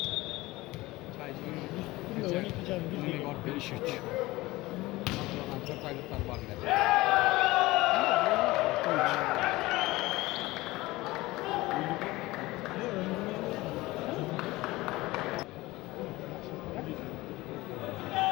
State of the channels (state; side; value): quieter; right; 19.7 dB